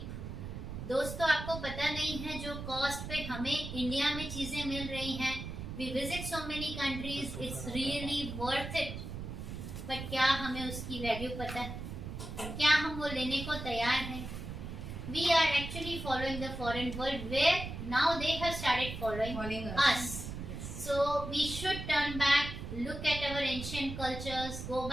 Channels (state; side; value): noise; right; rumble, 7 dB below the sound